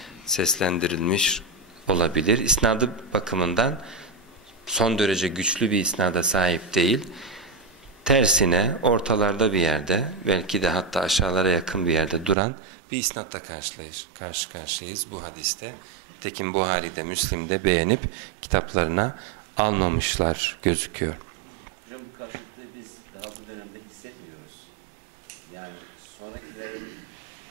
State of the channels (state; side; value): drops out; left; at 12.4 s